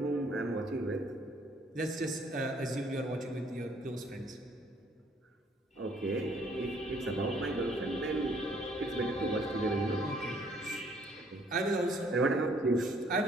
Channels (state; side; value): normal; both; correlation 0.63